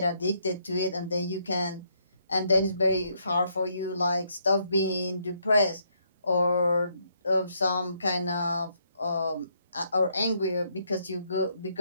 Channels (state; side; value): inverted; both; correlation -0.73